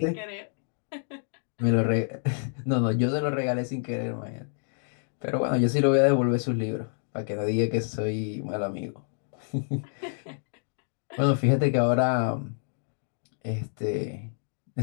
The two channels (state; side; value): silent; right; digital silence